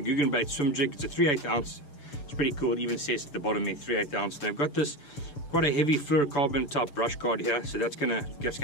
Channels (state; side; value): late; right; 6.9 ms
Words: Googan Baits swim jig. It's a 3/8 ounce. It's pretty cool. It even says at the bottom there 3/8 ounce. They've got this quite a heavy fluorocarbon top brush guard here, so that's gonna